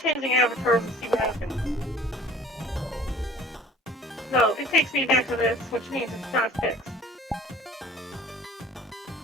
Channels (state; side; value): normal; both; correlation 0.48